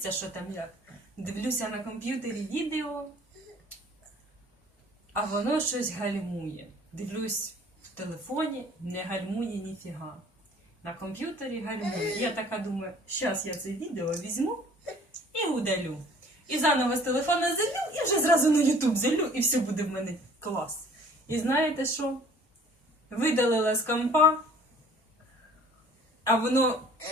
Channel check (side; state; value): both; normal; correlation 0.52